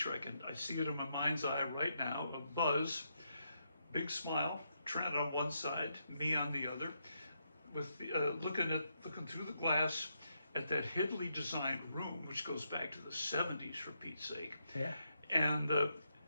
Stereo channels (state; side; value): inverted; both; correlation -0.80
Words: I see it in my mind's eye right now, of Buzz, big smile, Trent on one side, me on the other, with looking through the glass at that hiddly designed room, which goes back to the 70s, for Pete's sake. Yeah. And